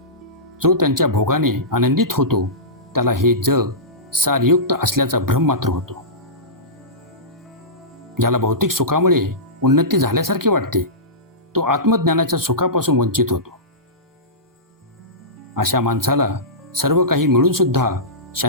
जो त्यांच्या भोगाने आनंदित होतो, त्याला हे जग सारयुक्त असल्याचा भ्रम मात्र होतो. ज्याला भौतिक सुखामुळे उन्नती झाल्यासारखे वाटते, तो आत्मज्ञानाच्या सुखापासून वंचित होतो. अशा माणसाला सर्व काही मिळून सुद्धा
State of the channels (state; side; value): normal; both; correlation -0.18